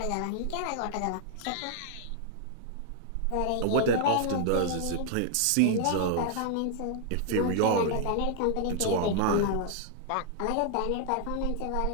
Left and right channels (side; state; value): both; different; correlation 0.00